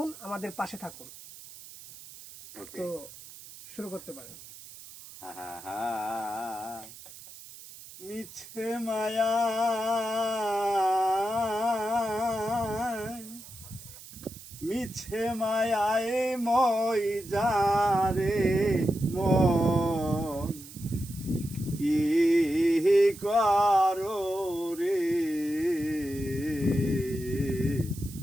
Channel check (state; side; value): noise; right; hiss, 17 dB below the sound